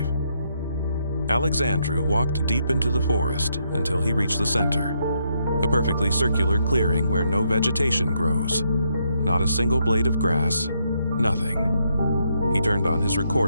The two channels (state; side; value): inverted; both; correlation -0.76